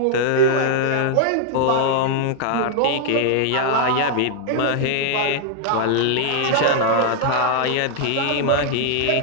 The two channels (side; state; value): both; different; correlation -0.01